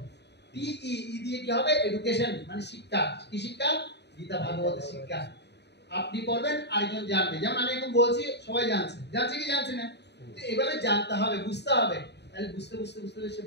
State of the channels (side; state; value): right; late; 0.50 ms